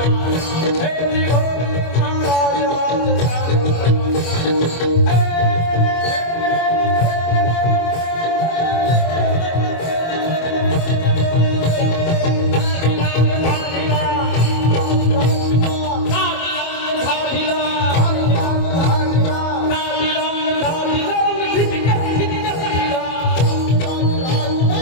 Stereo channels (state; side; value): late; right; 25 ms